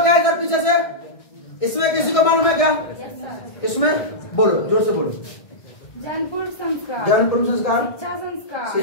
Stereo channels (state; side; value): late; right; 1.6 ms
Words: है इधर पीछे से? इसमें किसी को मालूम है क्या? इसमें बोलो, जोर से बोलो। जनपूर्व संस्कार,